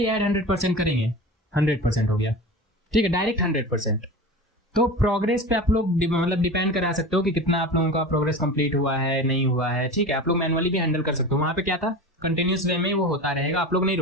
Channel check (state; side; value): normal; both; correlation 0.31